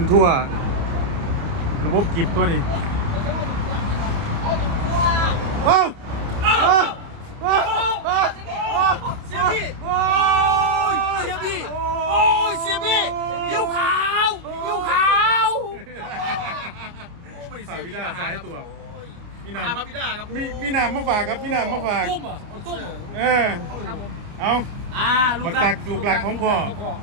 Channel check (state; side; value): late; left; 29 ms